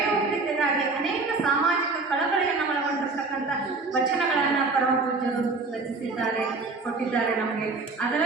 ಅನೇಕ ಸಾಮಾಜಿಕ ಕಳಕಳಿಯನ್ನು ಒಳಗೊಂಡಿರ್ತಕ್ಕಂಥ ವಚನಗಳನ್ನು ಪರಮ ಪೂಜ್ಯರು ರಚಿಸಿದ್ದಾರೆ, ಕೊಟ್ಟಿದ್ದಾರೆ ನಮಗೆ.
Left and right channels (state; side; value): quieter; left; 3.8 dB